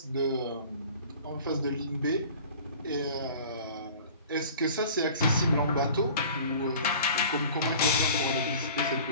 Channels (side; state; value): both; inverted; correlation -0.44